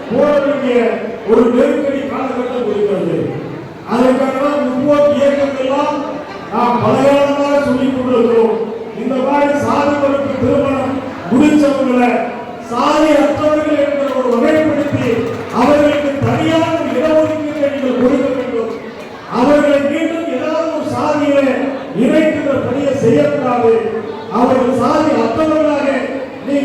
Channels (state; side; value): identical; both; correlation 1.00